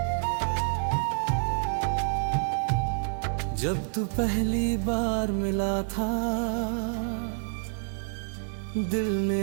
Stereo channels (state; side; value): silent; left; digital silence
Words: जब तू पहली बार मिला था, दिल